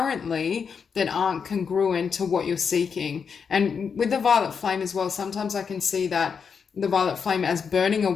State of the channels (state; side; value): quieter; right; 6.3 dB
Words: that aren't congruent to what you're seeking. And with the violet flame as well, sometimes I can see that the violet flame as burning